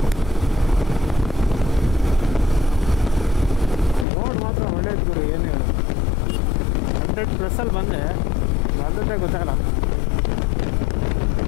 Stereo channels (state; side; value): drops out; right; at 4.0 s